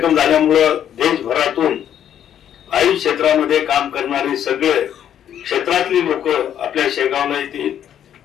झाल्यामुळे देशभरातून आयुष क्षेत्रामध्ये काम करणारे सगळे क्षेत्रातली लोक आपल्या शेगावला येतील।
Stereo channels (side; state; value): right; quieter; 9.9 dB